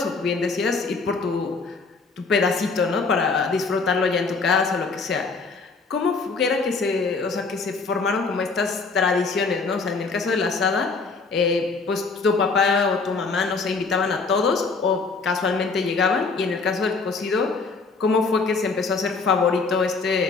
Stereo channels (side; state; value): right; quieter; 4.3 dB